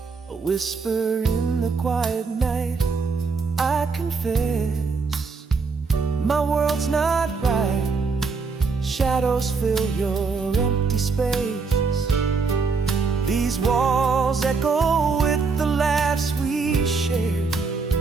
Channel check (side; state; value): left; quieter; 4.7 dB